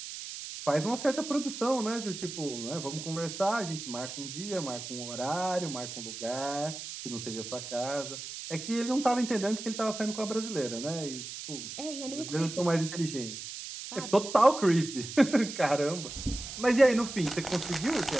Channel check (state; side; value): noise; right; hiss, 9 dB below the sound